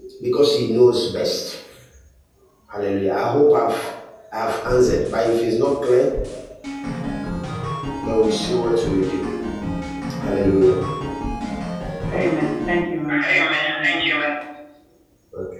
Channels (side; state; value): both; identical; correlation 1.00